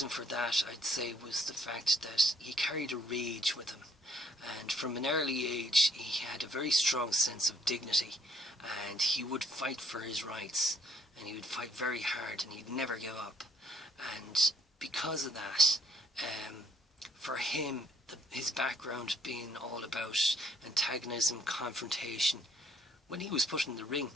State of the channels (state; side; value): normal; both; correlation 0.63